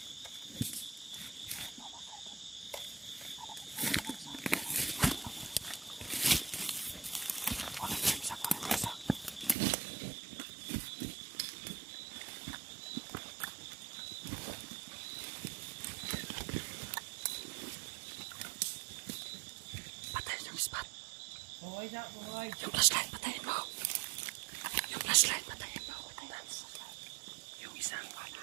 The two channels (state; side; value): drops out; left; at 9.6 s